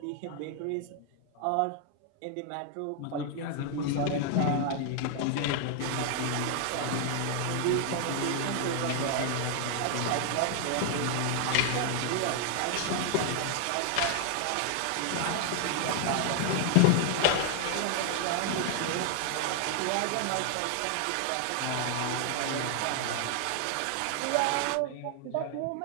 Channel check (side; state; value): both; different; correlation 0.00